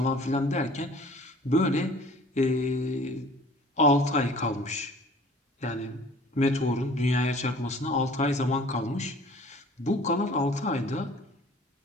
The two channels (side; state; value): both; normal; correlation 0.49